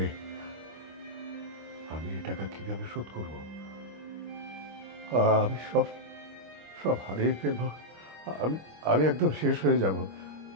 আমি এই টাকা কিভাবে শোধ করব? আমি সব সব হারিয়ে ফেলবো। আমি একদম শেষ হয়ে যাব।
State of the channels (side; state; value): left; late; 25 ms